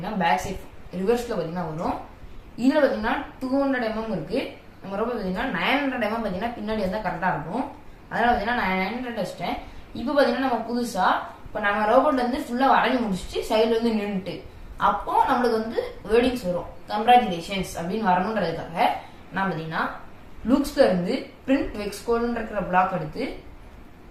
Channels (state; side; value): identical; both; correlation 1.00